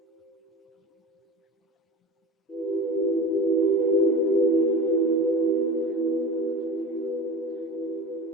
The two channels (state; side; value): normal; both; correlation 0.30